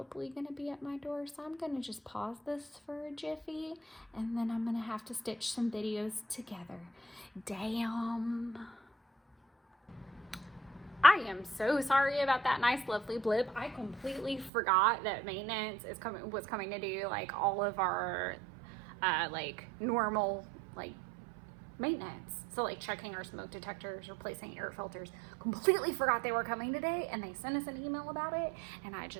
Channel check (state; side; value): drops out; left; at 14.5 s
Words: going to be at my door. So I'm going to just pause this for a jiffy, and then I'm going to have to stitch some videos together. Damn. I am so sorry about that nice, lovely blip. I completely forgot that maintenance was coming to do like all of our normal maintenance. So like checking our smoke detectors, replacing air filters. Completely forgot they were coming today, and they sent us an email about it, and I